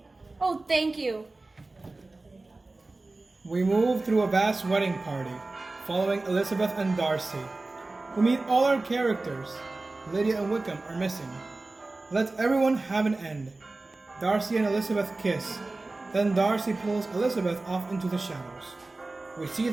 Oh, thank you. We move through a vast wedding party, following Elizabeth and Darcy. We meet all our characters. Lydia and Wickham are missing. Let everyone have an end. Darcy and Elizabeth kiss. Then Darcy pulls Elizabeth off into the shadows. We see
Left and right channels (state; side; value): quieter; left; 3.2 dB